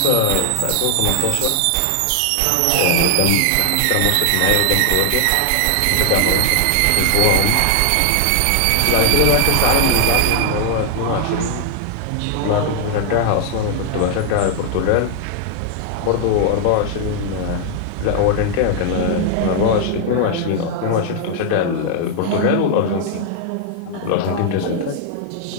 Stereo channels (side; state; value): both; different; correlation 0.00